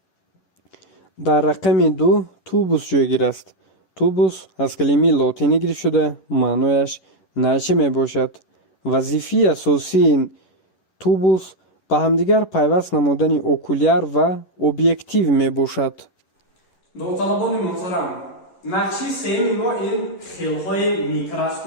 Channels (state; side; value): late; right; 11 ms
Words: дар рақами 2 тубус ҷойгир аст. тубус аз калимаи лотинӣ гирифта шуда маънояш найча мебошад. вазифаи асосии тубус ба ҳамдигар пайваст намудани окуляр ва объектив мебошад. довталабони муҳтарам, нақши сеюми мо ин хелҳои